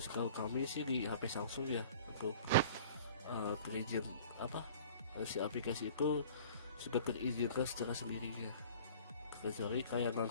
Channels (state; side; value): inverted; both; correlation -0.46